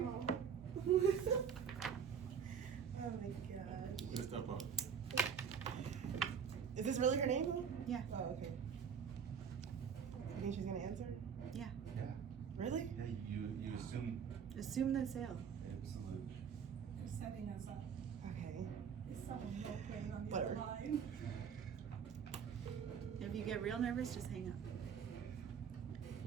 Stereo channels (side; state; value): left; quieter; 7.2 dB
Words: Oh my god. let's step up. Is this really her name? Yeah. Oh, okay. You think she's gonna answer? Yeah. Really? Yeah. You assume Assume the sale. absolute. They're setting us up. Okay. There's someone role playing on the other Whatever. line. If you get real nervous, just hang up.